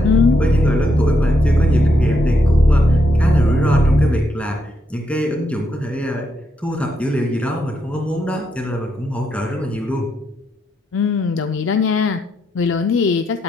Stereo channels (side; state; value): both; normal; correlation 0.79